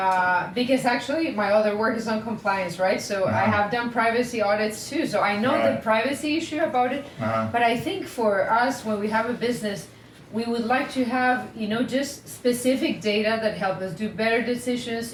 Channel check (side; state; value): both; identical; correlation 1.00